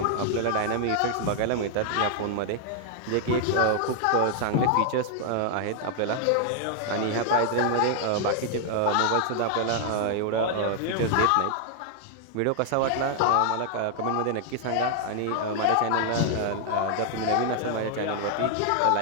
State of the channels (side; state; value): both; different; correlation 0.00